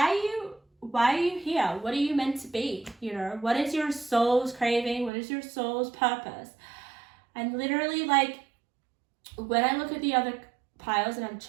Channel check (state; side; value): drops out; left; at 5.1 s